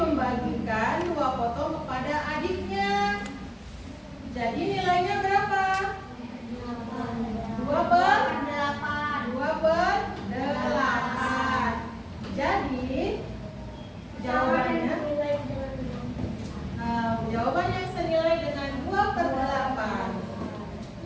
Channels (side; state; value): both; identical; correlation 1.00